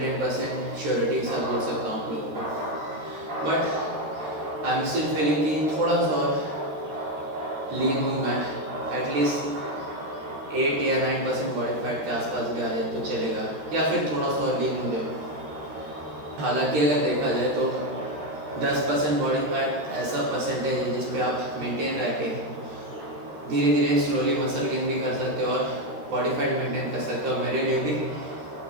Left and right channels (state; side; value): late; left; 13 ms